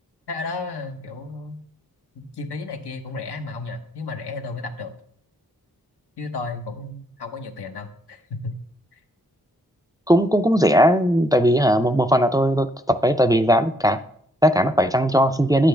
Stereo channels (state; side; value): normal; both; correlation 0.71